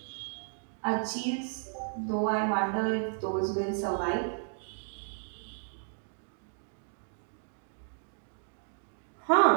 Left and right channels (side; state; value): left; silent; 56 dB below the other